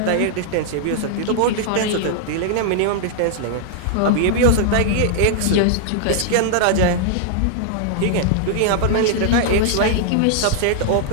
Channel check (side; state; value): both; different; correlation -0.01